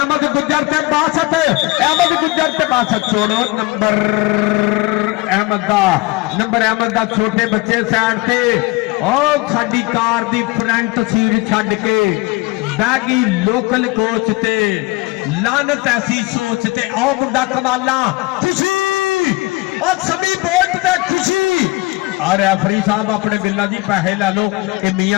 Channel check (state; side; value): quieter; right; 22.3 dB